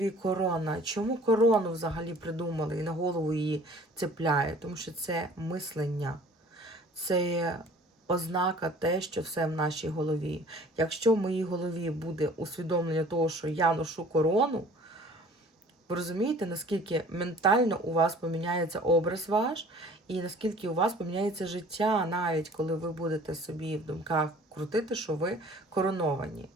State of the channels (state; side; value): normal; both; correlation 0.50